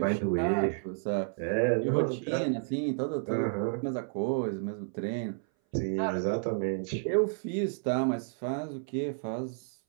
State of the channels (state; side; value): silent; left; 57 dB below the other